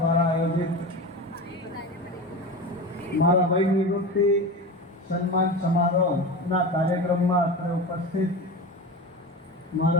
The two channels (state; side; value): normal; both; correlation 0.27